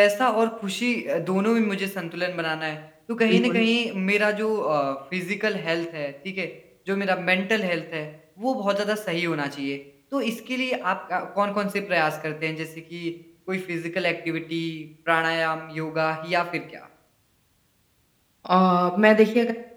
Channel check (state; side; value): identical; both; correlation 1.00